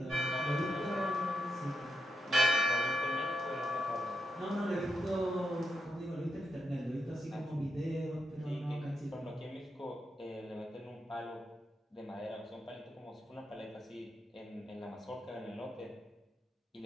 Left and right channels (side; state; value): both; normal; correlation 0.83